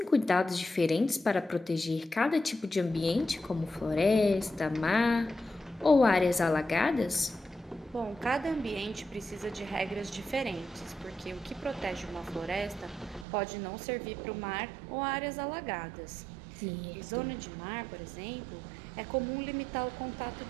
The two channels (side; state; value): left; drops out; at 13.2 s